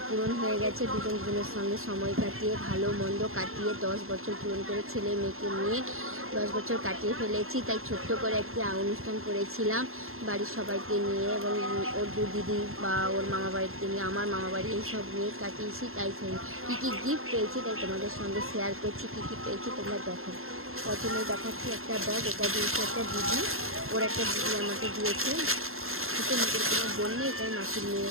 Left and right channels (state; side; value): late; left; 0.61 ms